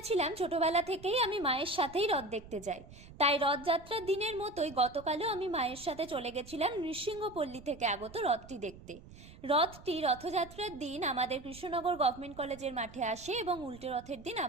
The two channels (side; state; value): right; noise; rumble, 18 dB below the sound